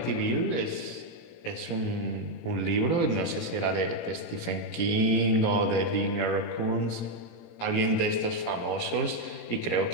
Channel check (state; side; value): late; right; 17 ms